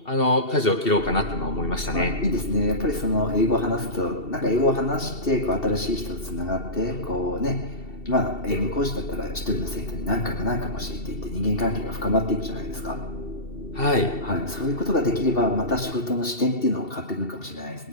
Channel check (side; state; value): right; late; 2.7 ms